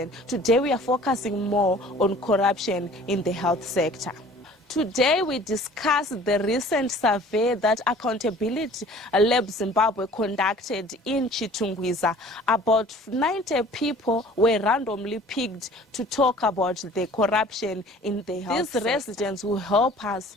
Today we are focusing more on corruption in the health sector. Today we discuss the recent survey that Accountability Lab Zimbabwe conducted in Chitungwiza. About 90 people were randomly picked to talk about the corruption in the health sector. These residents will help us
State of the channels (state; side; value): normal; both; correlation 0.49